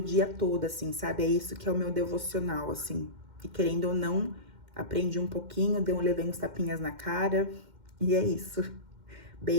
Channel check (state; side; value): late; left; 2.1 ms